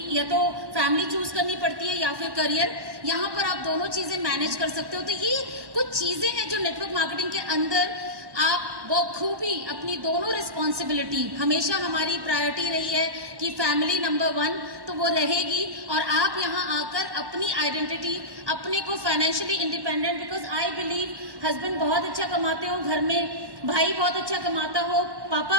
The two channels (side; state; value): left; late; 1.1 ms